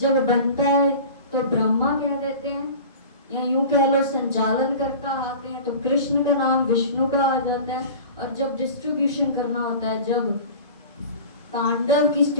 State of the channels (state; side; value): inverted; both; correlation -0.38